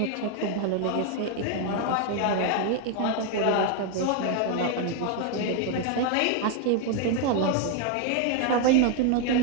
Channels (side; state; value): both; different; correlation 0.01